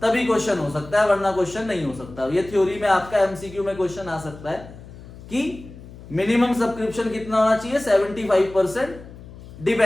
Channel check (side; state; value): left; noise; hum, 17 dB below the sound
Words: तभी क्वेश्चन हो सकता है, वरना क्वेश्चन नहीं हो सकता। ये थ्योरी में आपका एमसीक्यू में क्वेश्चन आ सकता है कि मिनिमम सब्सक्रिप्शन कितना होना चाहिए? 75%